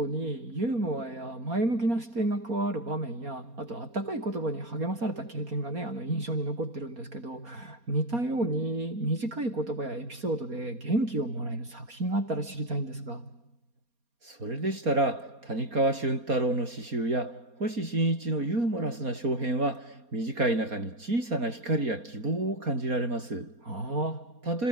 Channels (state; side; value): late; left; 4.2 ms